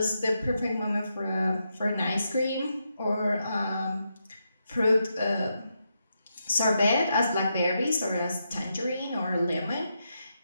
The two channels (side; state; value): both; inverted; correlation -0.84